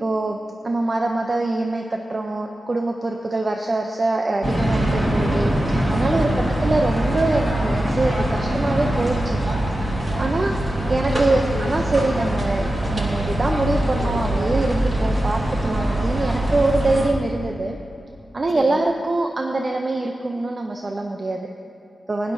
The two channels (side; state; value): both; normal; correlation 0.93